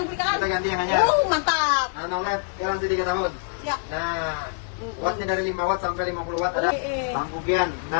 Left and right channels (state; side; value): silent; right; digital silence